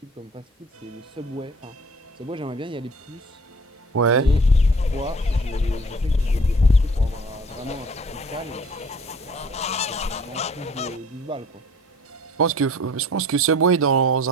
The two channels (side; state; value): both; normal; correlation 0.51